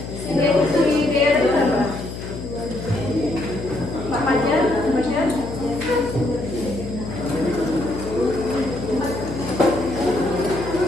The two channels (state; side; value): noise; left; hum, 8 dB below the sound